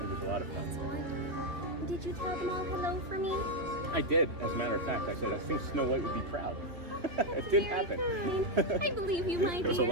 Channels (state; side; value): late; left; 2.9 ms